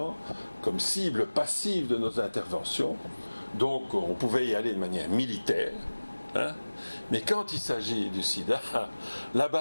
comme cible passive de nos interventions. Donc on pouvait y aller de manière militaire. Mais quand il s'agit du sida, la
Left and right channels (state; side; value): inverted; both; correlation -1.00